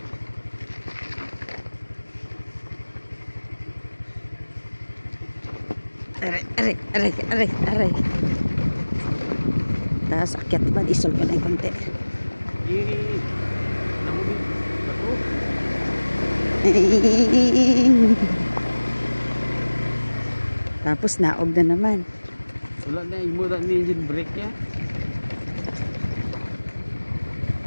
Aray, aray, aray, aray, aray. Tapos akyat ba? Isol ko na yung konti. Namuli. Bato. Tapos naog na naman. Wala na, imo na ni engine brake ya.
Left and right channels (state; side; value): inverted; both; correlation -1.00